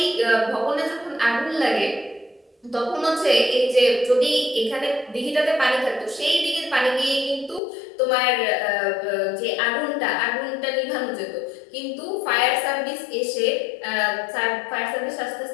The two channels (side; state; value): right; drops out; at 7.6 s